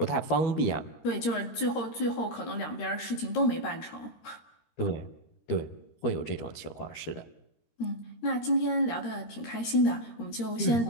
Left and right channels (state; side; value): late; right; 13 ms